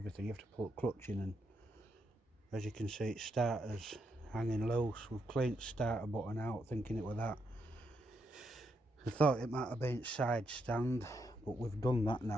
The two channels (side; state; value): both; normal; correlation 0.79